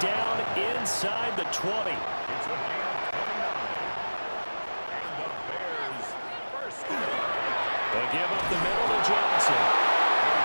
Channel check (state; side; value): inverted; both; correlation -1.00